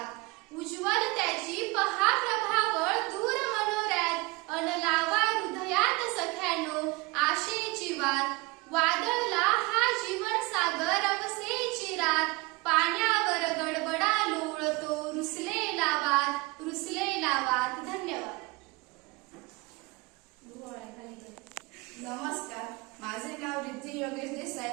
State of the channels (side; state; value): left; quieter; 24.7 dB